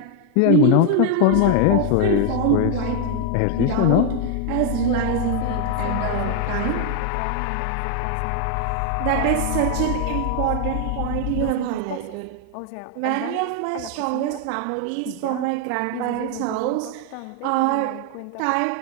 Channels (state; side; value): different; both; correlation 0.00